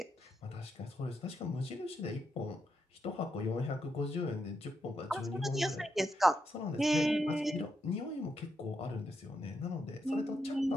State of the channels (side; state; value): both; normal; correlation 0.83